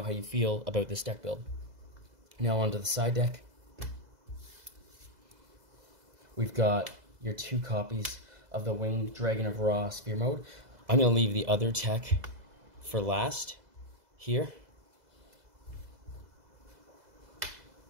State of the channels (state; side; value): late; left; 2.0 ms